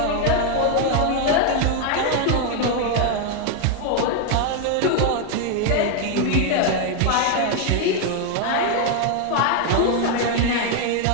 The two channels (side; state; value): both; different; correlation 0.01